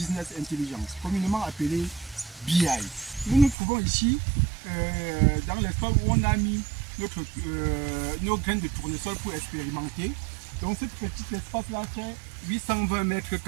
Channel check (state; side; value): drops out; left; at 3.6 s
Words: intelligence, communément appelé BI. Nous nous trouvons ici dans l'espace où on a mis nos graines de tournesol pour expérimenter. Donc ce petit espace-là fait 820 mètres